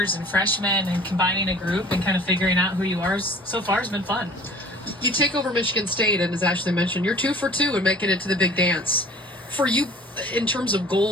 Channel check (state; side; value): normal; both; correlation 0.48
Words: and freshmen and combining a group and kind of figuring out who you are so far has been fun. You take over Michigan State, and as Ashley mentioned, you're 2 for 2 and making it to the big dance. For you, in terms of